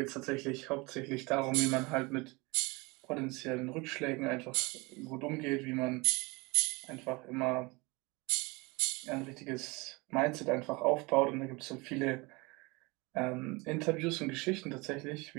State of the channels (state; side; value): quieter; left; 25.6 dB